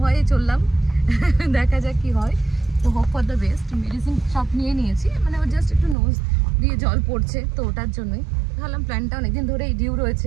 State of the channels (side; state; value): left; drops out; at 6.0 s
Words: ভয়ে চললাম। দেখা যাক কি হয়। তো hope for the best. Medicine সব নিয়ে নিয়েছি, মানে ও জাস্ট একটু নোজ দিয়ে জল পড়ছে, তো ওটার জন্যই ভাবলাম প্ল্যানটা অনেকদিন ধরেই ডিউ